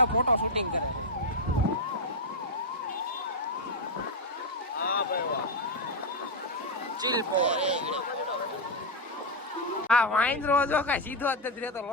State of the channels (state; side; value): normal; both; correlation 0.02